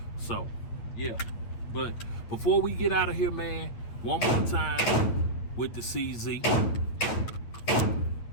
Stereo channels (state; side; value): late; right; 8.7 ms